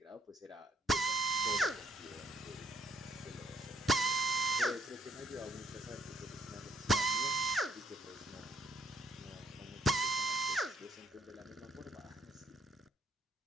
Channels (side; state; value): both; normal; correlation 0.68